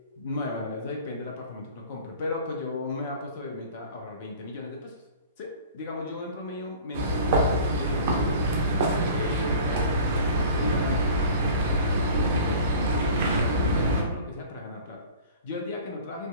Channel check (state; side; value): inverted; both; correlation -0.43